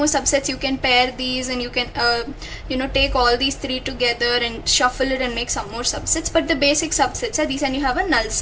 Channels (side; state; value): both; identical; correlation 1.00